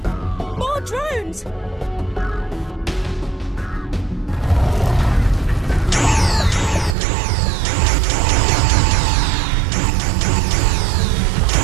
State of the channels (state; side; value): drops out; left; at 7.0 s